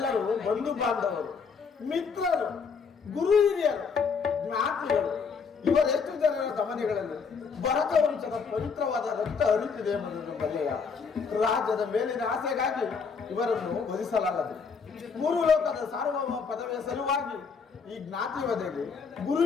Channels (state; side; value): quieter; right; 5.5 dB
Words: ಬಂಧು ಬಾಂಧವರು, ಮಿತ್ರರು, ಗುರು ಹಿರಿಯರು, ಜ್ಞಾತಿಗಳು. ಇವರೆಷ್ಟು ಜನರ ಗಮನಗಳಲ್ಲಿ ಭರತ ವಂಶದ ಪವಿತ್ರವಾದ ರಕ್ತ ಹರಿತಿದೆ ಎಂಬುದನ್ನು ಬಲ್ಲೆಯ. ರಾಜ್ಯದ ಮೇಲಿನ ಆಸೆಗಾಗಿ ಇವರನ್ನು ವಧಿಸಲಾಗದು. ಮೂರು ಲೋಕದ ಸಾರ್ವಭೌಮ ಪದವಿಯ ಸಲುವಾಗಿ ಈ ಜ್ಞಾತಿ ವಧೆಗೆ, ಗುರು